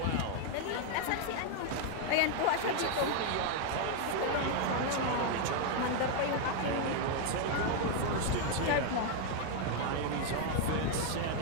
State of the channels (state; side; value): different; both; correlation 0.01